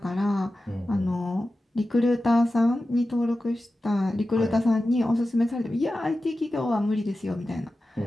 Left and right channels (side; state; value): both; normal; correlation 0.94